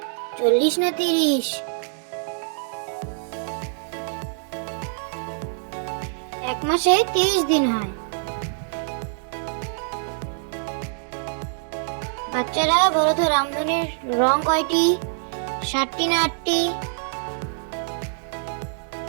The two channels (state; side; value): silent; left; digital silence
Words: 40 না 30? এক মাসে 30 দিন হয়। বাচ্চারা বলো তো, রামধনুর রং কয়টি? 7টি না 8টি?